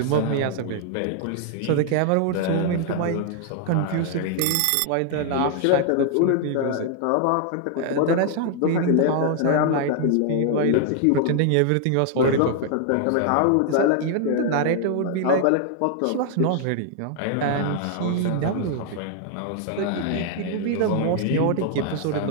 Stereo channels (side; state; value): both; different; correlation 0.00